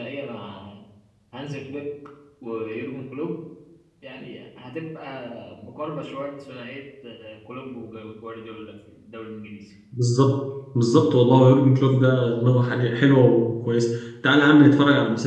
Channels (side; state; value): both; identical; correlation 1.00